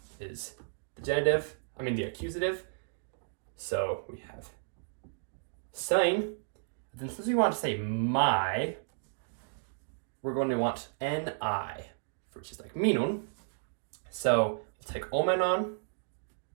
is the accusative. So we have sein. Then since we want to say my, we're going to want ni, which is like minun. So let's take omenon.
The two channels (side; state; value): left; silent; digital silence